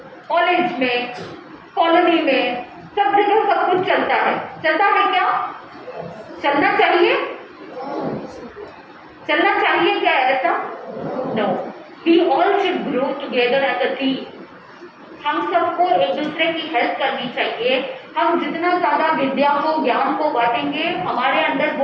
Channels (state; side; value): identical; both; correlation 1.00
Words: कॉलेज में, कॉलोनी में, सब जगह सब कुछ चलता है। चलता है क्या? चलना चाहिए? चलना चाहिए क्या ऐसा? No. We all should grow together as a team. हम सबको एक दूसरे की हेल्प करनी चाहिए। हम जितना ज्यादा विद्या को, ज्ञान को बांटेंगे, हमारे अंदर